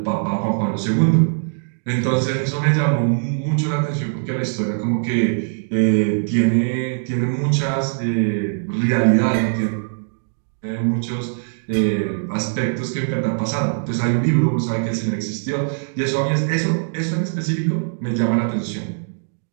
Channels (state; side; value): silent; left; digital silence